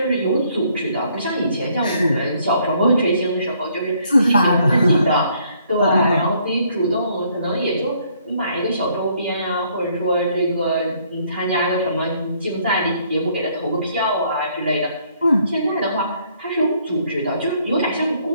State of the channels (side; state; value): both; inverted; correlation -0.66